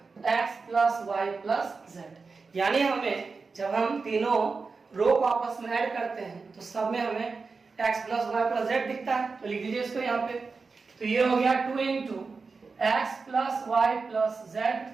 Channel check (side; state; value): left; quieter; 4.5 dB